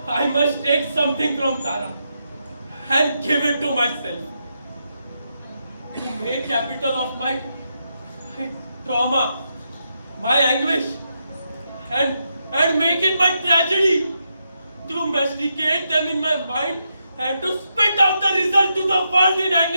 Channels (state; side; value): inverted; both; correlation -0.83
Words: I must take something from Tara and give it to myself. To make capital of my trauma, my anguish, and make it my tragedy. To masticate them in my mind and to spit out the result to the world in